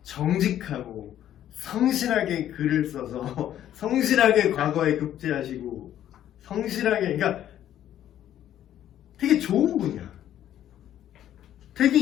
정직하고 성실하게 글을 써서 성실하게 과거에 급제하시고 성실하게 그러니까 되게 좋은 분이야. 되게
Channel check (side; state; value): right; quieter; 11.4 dB